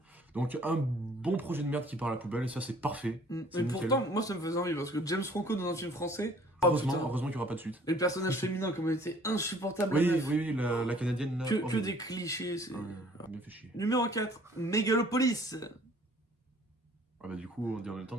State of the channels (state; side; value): normal; both; correlation 0.56